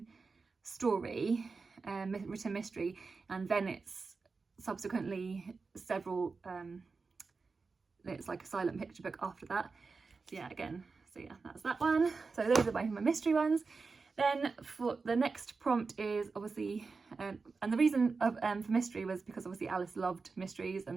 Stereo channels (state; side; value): quieter; left; 4.4 dB